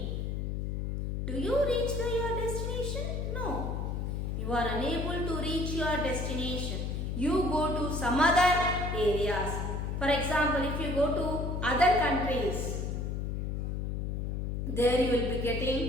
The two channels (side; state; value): left; noise; hum, 2 dB below the sound